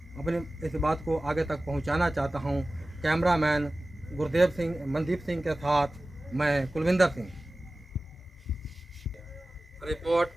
अपनी इस बात को आगे तक पहुंचाना चाहता हूं। कैमरामैन गुरदेव सिंह, मनदीप सिंह के साथ मैं कुलविंदर सिंह। रिपोर्ट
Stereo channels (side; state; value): both; normal; correlation 0.97